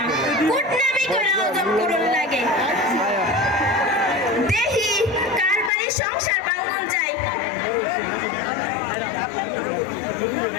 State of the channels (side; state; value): right; drops out; at 5.7 s